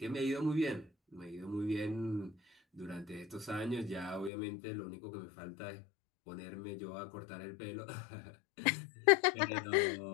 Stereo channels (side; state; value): right; drops out; at 4.3 s